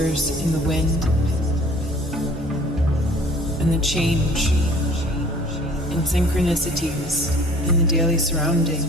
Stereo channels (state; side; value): normal; both; correlation 0.51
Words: in the wind, and the change in synchronicities in the daily